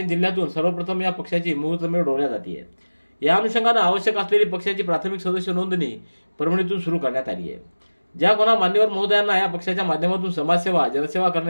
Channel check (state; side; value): inverted; both; correlation -1.00